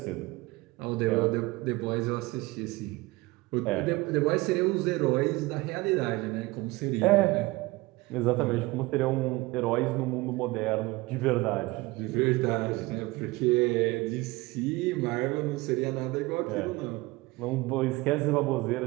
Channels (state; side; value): quieter; left; 21.6 dB